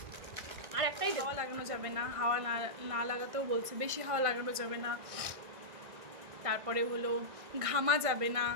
আর একটাই, হাওয়া লাগানো যাবে না, হাওয়া না লাগাতেও বলছে, বেশি হাওয়া লাগানো যাবে না, তারপরে হলো ঘামা যাবে না।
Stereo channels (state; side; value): late; left; 1.6 ms